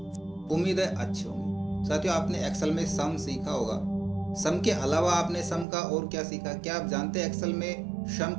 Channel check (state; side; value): drops out; left; at 5.7 s